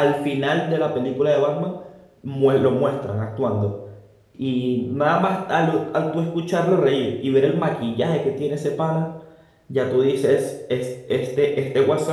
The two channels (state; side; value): identical; both; correlation 1.00